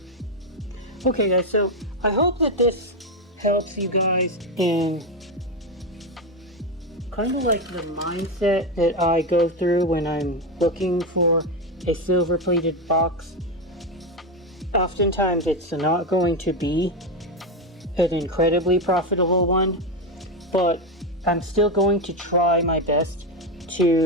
Okay guys, so I hope that this helps you guys in kind of like the mindset that I go through when I'm looking for a silver plated box. Oftentimes it's not going to be an incredibly profitable one, but I'm still going to try my best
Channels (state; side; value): normal; both; correlation 0.10